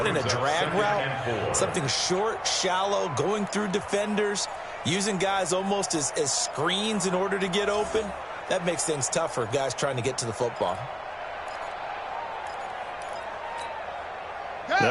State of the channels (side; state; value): both; identical; correlation 1.00